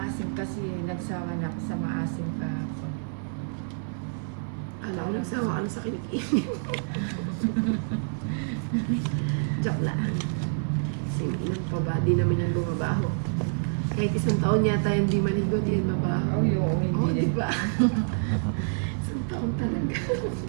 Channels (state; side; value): silent; left; 60 dB below the other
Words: kasi nagsawa na ako sa maasim kahapon. Alam ko, nagsawa ka na sa kinikinig. Joke lang. Singinan pa ba? Di naman yan bumabaho. Kahit isang taon yata hindi maligo, di yan mabaho. Oh, yung hindi Oo, din. diba? Isang taon talaga.